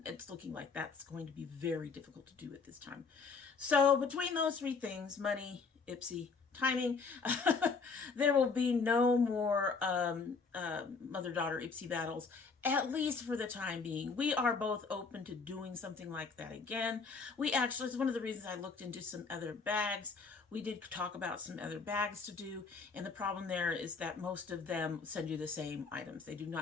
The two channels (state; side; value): quieter; right; 4.7 dB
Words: it's looking like that's going to be very difficult to do at this time. So between those 3 things, money, Ipsy, timing, there will be no more mother-daughter Ipsy battles, at least for the time being. We are both open to doing something like that again. We actually, it's one of the reasons I looked into some other bags. We did talk about some other bags to do, and the problem there is that most of them send you the same items. They do